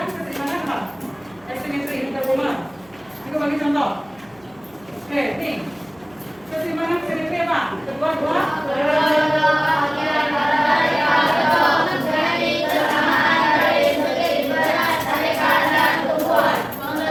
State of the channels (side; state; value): right; noise; hum, 29 dB below the sound